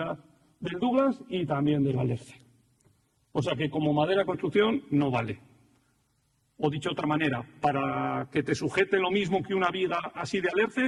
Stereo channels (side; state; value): both; identical; correlation 1.00